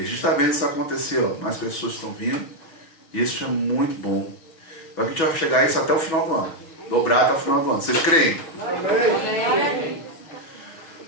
a gente está vendo isso acontecer, ó. Mais pessoas estão vindo, e isso é muito bom. A gente vai chegar a isso até o final do ano, dobrar até o final do ano. Vocês creem? Amém.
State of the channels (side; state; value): right; late; 6.1 ms